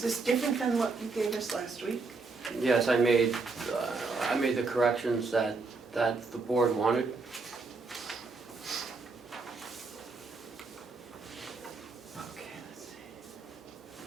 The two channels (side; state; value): left; quieter; 4.1 dB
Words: this different than what you gave us last week? Yes, I made the corrections that the board wanted. Okay, let's see.